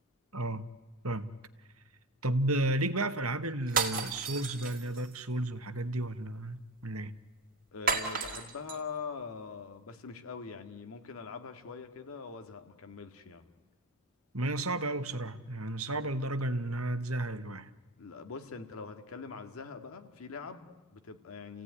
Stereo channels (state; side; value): normal; both; correlation 0.26